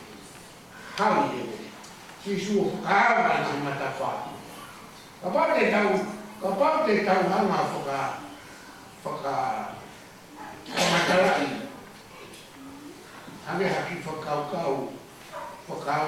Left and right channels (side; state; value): both; identical; correlation 1.00